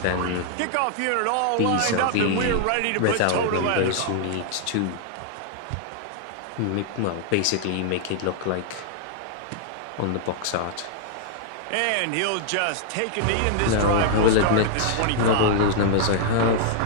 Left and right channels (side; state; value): both; different; correlation -0.01